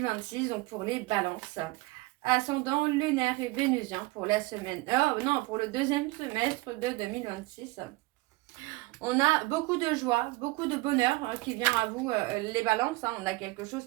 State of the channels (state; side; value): quieter; left; 22.0 dB